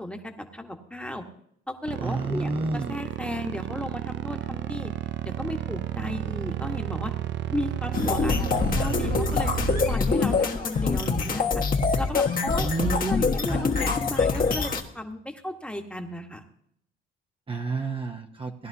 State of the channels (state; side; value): normal; both; correlation 0.55